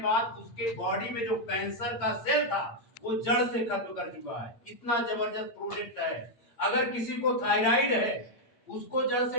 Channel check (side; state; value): right; late; 8.7 ms